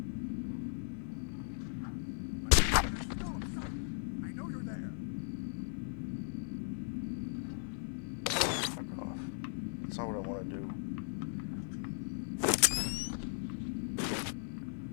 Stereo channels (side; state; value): right; silent; digital silence